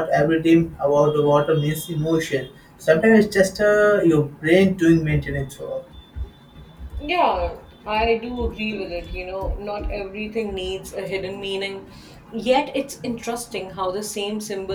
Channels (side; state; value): both; identical; correlation 1.00